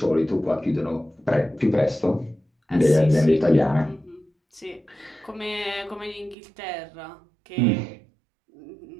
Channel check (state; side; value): drops out; left; at 6.4 s